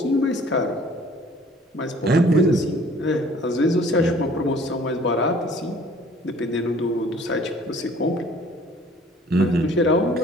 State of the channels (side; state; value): both; normal; correlation 0.54